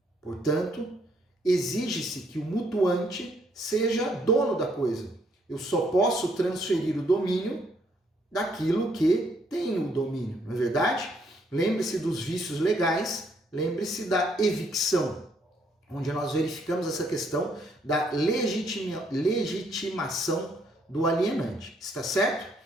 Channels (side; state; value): both; normal; correlation 0.70